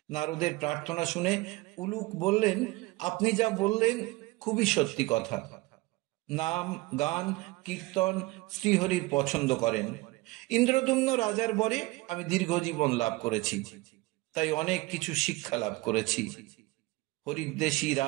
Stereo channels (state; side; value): quieter; left; 21.6 dB